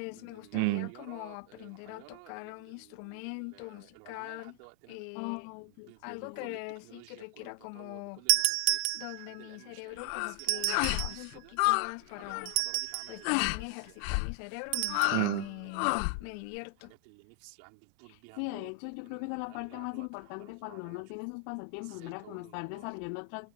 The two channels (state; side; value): different; both; correlation 0.00